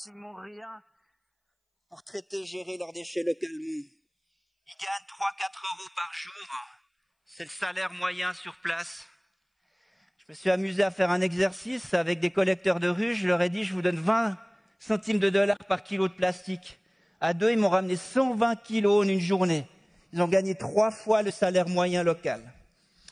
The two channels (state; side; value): identical; both; correlation 1.00